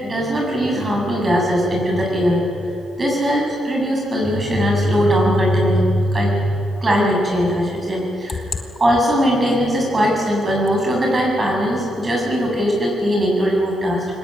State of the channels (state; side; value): normal; both; correlation 0.80